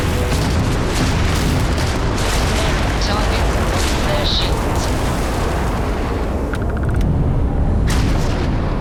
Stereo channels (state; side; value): identical; both; correlation 1.00